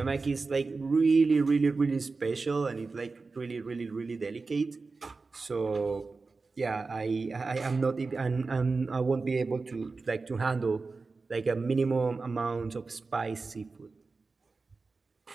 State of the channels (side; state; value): left; quieter; 4.1 dB